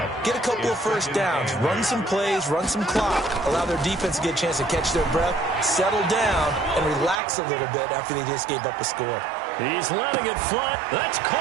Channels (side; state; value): left; drops out; at 7.2 s